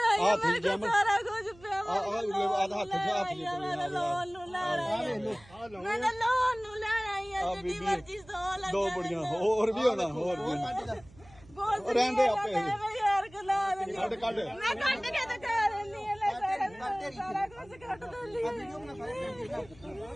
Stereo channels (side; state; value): right; noise; hum, 24 dB below the sound